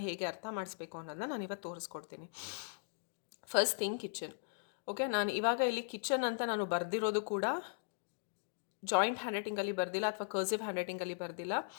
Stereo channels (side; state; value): right; silent; digital silence